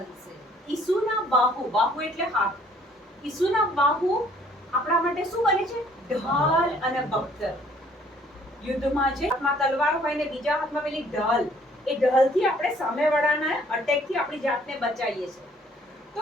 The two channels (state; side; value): normal; both; correlation 0.60